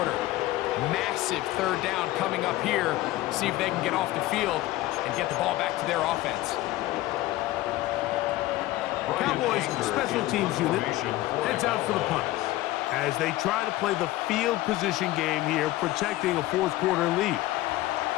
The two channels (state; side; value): quieter; right; 16.8 dB